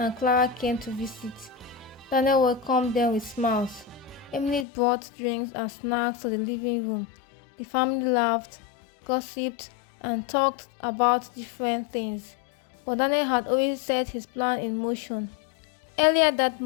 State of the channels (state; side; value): drops out; right; at 4.7 s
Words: Clara came to visit. Daniel welcomed them with smiles. Emily brought drinks and snacks to the living room. The family laughed, gossiped, and talked about different things. But Daniel had already set his plan in motion. Earlier that